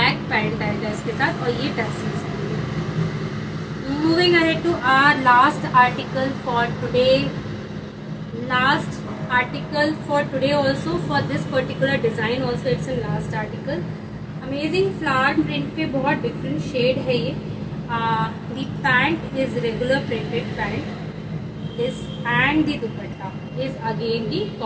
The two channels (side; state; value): both; identical; correlation 1.00